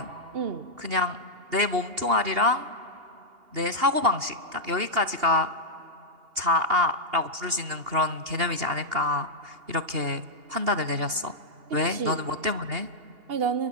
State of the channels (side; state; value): left; late; 2.8 ms